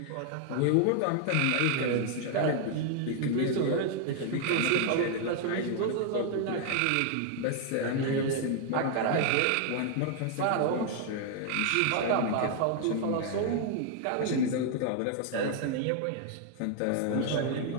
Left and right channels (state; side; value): different; both; correlation 0.00